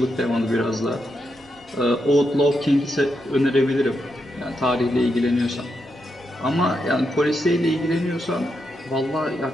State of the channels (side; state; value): both; normal; correlation 0.83